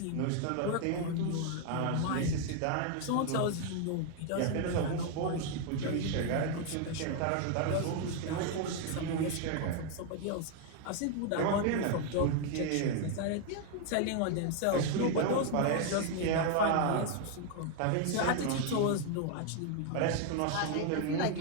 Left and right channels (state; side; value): different; both; correlation 0.00